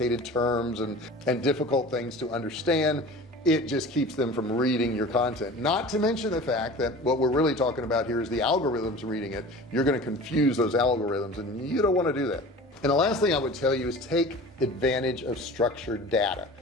terms and difficult things to understand, it just keeps them from reading your content. Not to mention the fact that what we're really talking about here is the algorithms reading it. You're going to confuse those algorithms, and you don't want to do that. And the last thing I would tell you is take advantage of structured data.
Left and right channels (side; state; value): both; normal; correlation 0.39